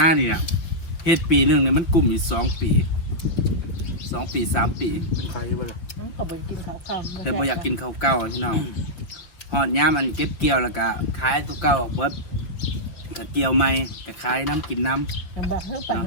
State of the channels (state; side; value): late; right; 5.9 ms